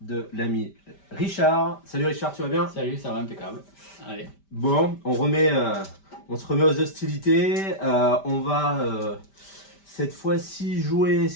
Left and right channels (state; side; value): late; right; 5.1 ms